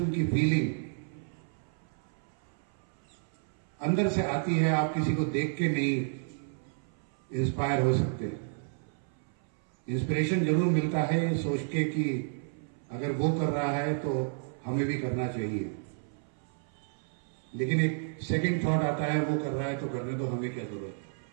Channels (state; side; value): silent; left; 57 dB below the other